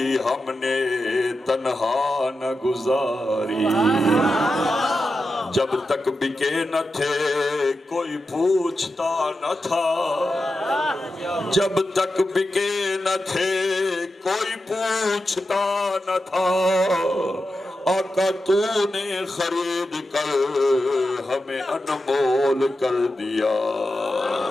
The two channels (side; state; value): both; normal; correlation 0.90